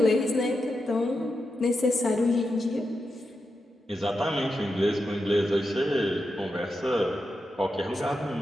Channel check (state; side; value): normal; both; correlation 0.87